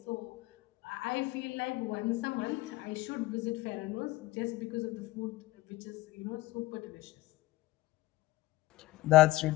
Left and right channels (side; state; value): right; quieter; 18.4 dB